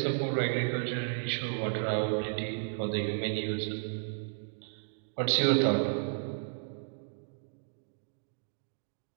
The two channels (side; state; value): left; silent; digital silence